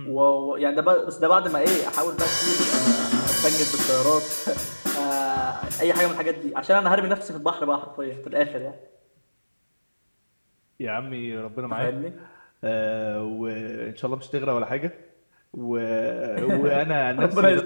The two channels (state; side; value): inverted; both; correlation -1.00